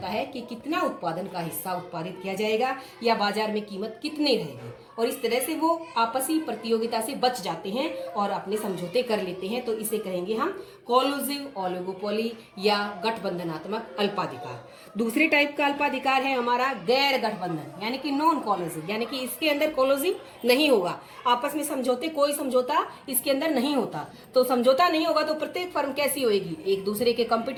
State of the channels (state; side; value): identical; both; correlation 1.00